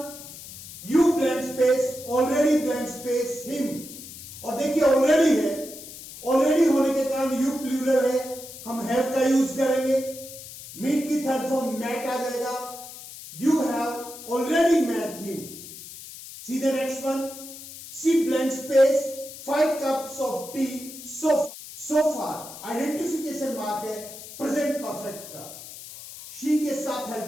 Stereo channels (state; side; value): noise; left; hiss, 14 dB below the sound